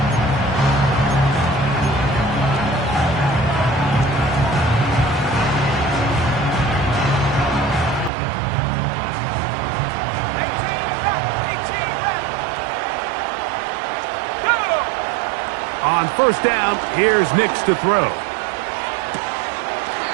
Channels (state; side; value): drops out; left; at 8.1 s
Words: On 1st down, here's Nix to throw.